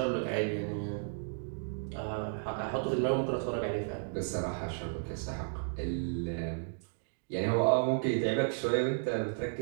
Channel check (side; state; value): left; silent; digital silence